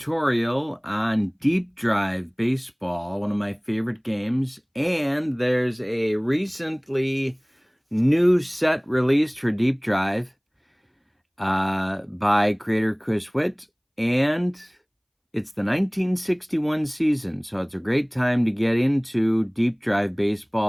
on Deep Drive Baseball, one of my favorite games. And there's a recently new set released for Deep Drive by creator Chris Witt. And it's the 1961 season, so it's a great time to get into Deep Drive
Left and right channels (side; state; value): both; identical; correlation 1.00